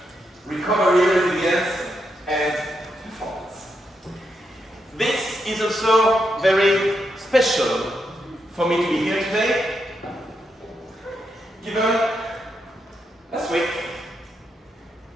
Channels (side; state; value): both; normal; correlation 0.82